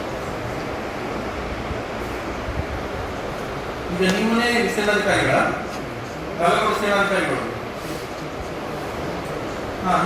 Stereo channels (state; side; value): identical; both; correlation 1.00